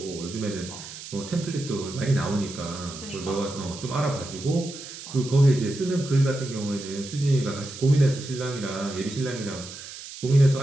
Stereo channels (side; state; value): right; noise; hiss, 13 dB below the sound